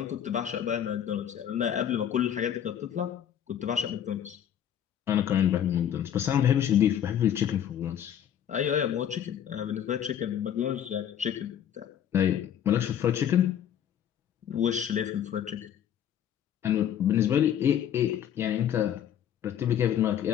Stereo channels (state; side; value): quieter; right; 9.7 dB